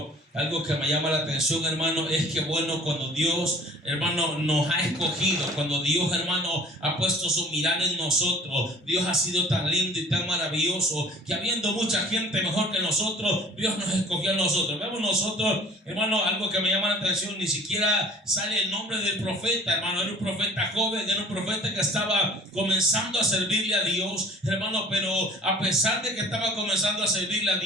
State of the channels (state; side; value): normal; both; correlation 0.49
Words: algo que me llama la atención, hermano, es que bueno, cuando Dios, hermano, nos ha escogido, cuando Dios, hermano, ha puesto su mirada en nosotros, Dios ha sido tan lindo y tan maravilloso que habiendo mucha gente mejor que nosotros, Dios nos escogió a nosotros. Vemos nosotros, hermano, algo que me llama la atención, ni siquiera sale el nombre del profeta, hermano. Era un profeta joven, era un profeta que estaba comenzando a servirle a Dios, hermano, pero a pesar de que estaba comenzando a servirle a